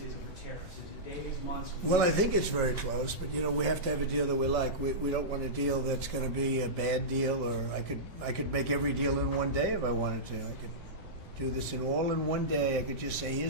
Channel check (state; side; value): normal; both; correlation -0.15